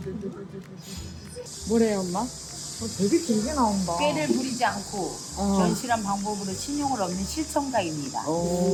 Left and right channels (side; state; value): both; identical; correlation 1.00